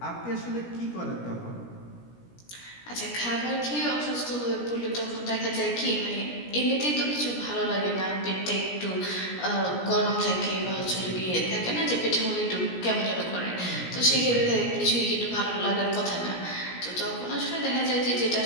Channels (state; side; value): late; right; 17 ms